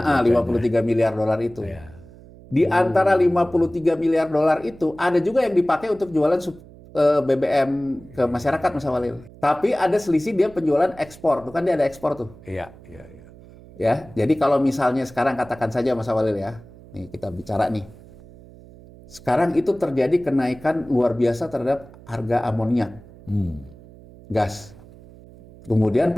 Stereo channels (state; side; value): noise; right; hum, 21 dB below the sound